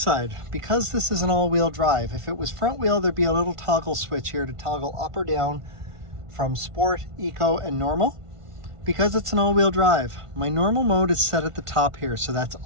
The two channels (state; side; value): late; left; 1.5 ms